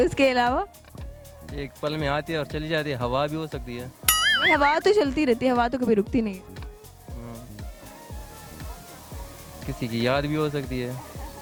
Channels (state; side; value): identical; both; correlation 1.00